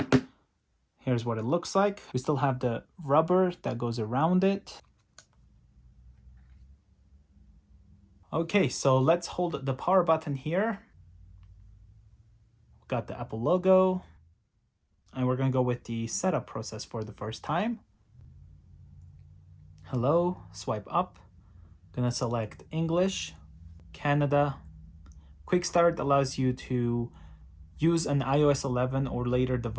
Here's what it looks like. We still have the rubber that goes around it. Okay, so let's hold the power button here. Got the Apple logo. And we're going to go with the setup process for the first time. Hello, swipe up. Gonna select English, Canada. Quickstart allows you to use an iOS 11 or later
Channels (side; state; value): both; identical; correlation 1.00